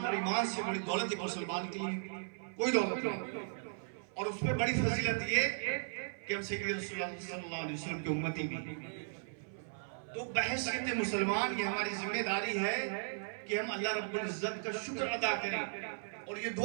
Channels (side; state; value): left; silent; 53 dB below the other